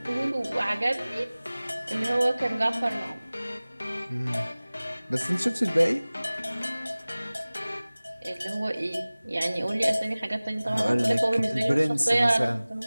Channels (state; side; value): inverted; both; correlation -0.99